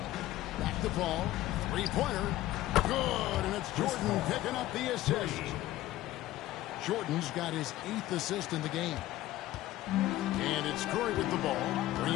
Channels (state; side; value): quieter; right; 15.4 dB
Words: Back to Paul. Three-pointer. Good, and it's Jordan picking up the assist. Jordan's got his 8th assist in the game. And it's Curry with the ball,